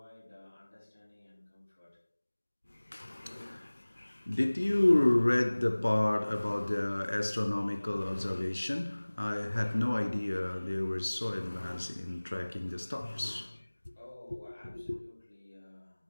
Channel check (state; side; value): inverted; both; correlation -1.00